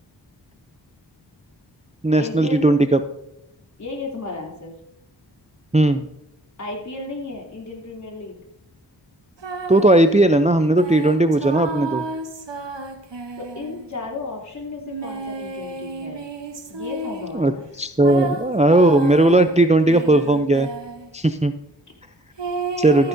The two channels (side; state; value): both; normal; correlation 0.60